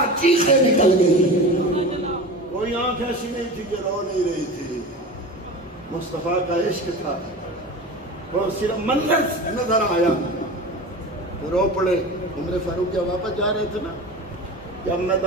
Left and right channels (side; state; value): both; normal; correlation 0.31